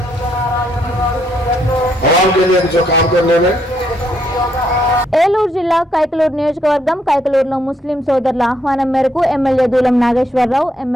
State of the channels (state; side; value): normal; both; correlation 0.73